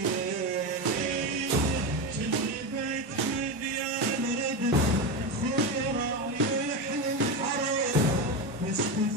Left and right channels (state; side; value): normal; both; correlation 0.16